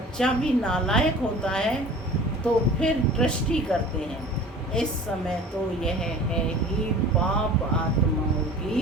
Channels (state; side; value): normal; both; correlation 0.42